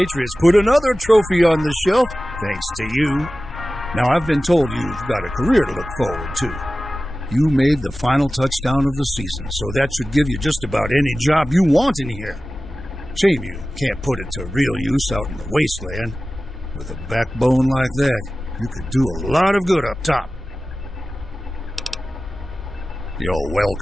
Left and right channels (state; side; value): normal; both; correlation 0.96